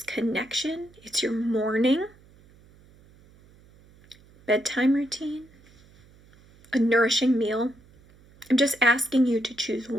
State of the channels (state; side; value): noise; right; hum, 27 dB below the sound